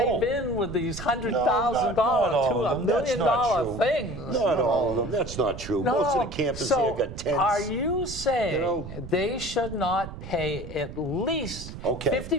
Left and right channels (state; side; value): noise; right; rumble, 11 dB below the sound